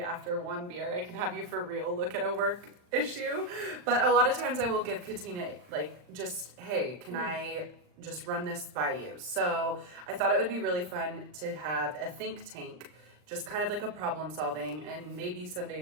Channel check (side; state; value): left; late; 39 ms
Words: one beer, I can have you for real look at a work issue. But a lot of times I will give Katina, like, just, hey, can I just run this by you? So I thought it would be really fun to have a think tank, just kind of like a problem solving. And maybe some